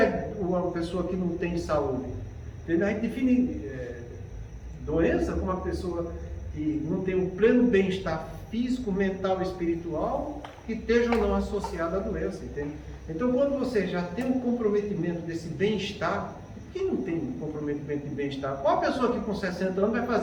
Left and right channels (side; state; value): both; identical; correlation 1.00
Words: uma pessoa que não tem saúde? A gente define doença como uma pessoa que não tem um pleno bem-estar físico, mental e espiritual que esteja ou não associada à doença, entende? Então, quando você já tem um comprometimento desse bem-estar, quem não tem comprometimento de bem-estar? Qual a pessoa que com 60 anos vai